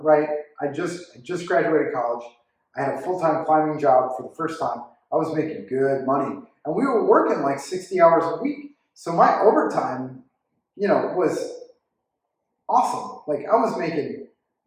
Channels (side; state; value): both; identical; correlation 1.00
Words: right? I just graduated college. I had a full-time climbing job for the first time. I was making good money, and we were working like 60 hours a week. So my overtime, was awesome. Like I was making,